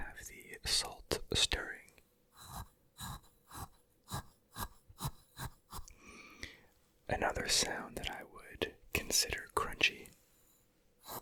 the salt stirring. Another sound that I would consider crunchy.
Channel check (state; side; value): identical; both; correlation 1.00